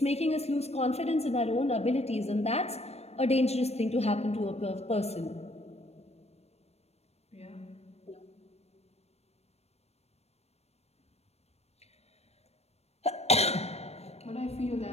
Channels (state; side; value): late; right; 0.31 ms